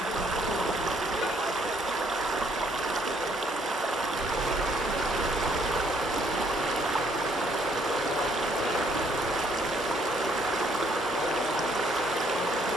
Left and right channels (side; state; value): both; normal; correlation 0.67